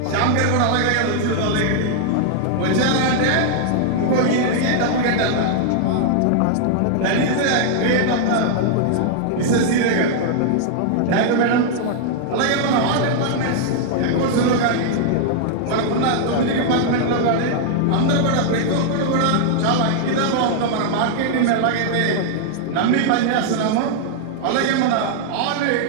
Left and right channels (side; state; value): both; different; correlation 0.00